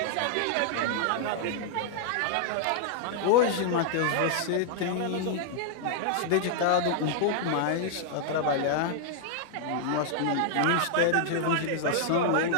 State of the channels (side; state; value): both; different; correlation -0.01